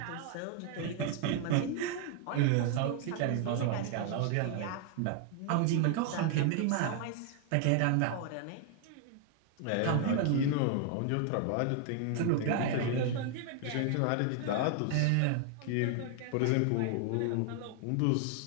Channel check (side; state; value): both; different; correlation 0.00